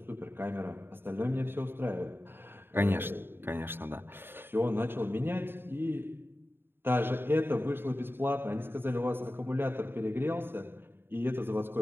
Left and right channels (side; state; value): left; late; 0.10 ms